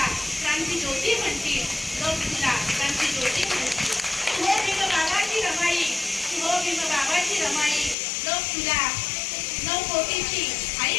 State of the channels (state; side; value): drops out; right; at 8.0 s